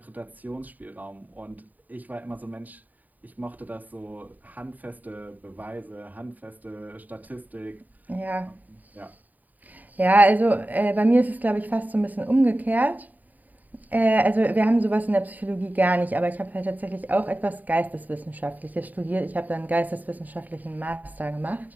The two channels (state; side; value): late; left; 0.082 ms